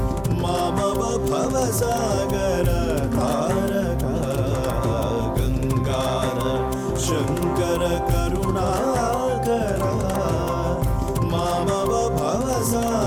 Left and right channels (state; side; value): identical; both; correlation 1.00